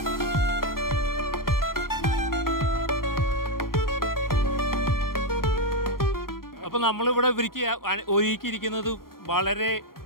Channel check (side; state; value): right; late; 0.92 ms